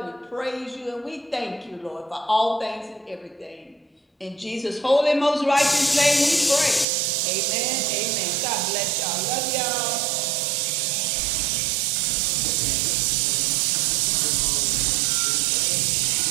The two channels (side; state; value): left; drops out; at 6.9 s